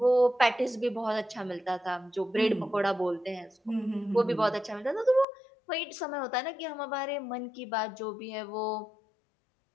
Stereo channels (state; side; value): drops out; right; at 5.2 s